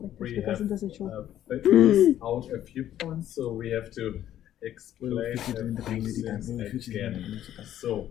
we have figured out a few points, so we have to explain a few things again. So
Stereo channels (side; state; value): right; quieter; 11.7 dB